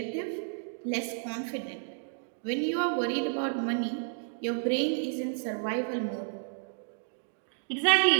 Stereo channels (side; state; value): left; silent; digital silence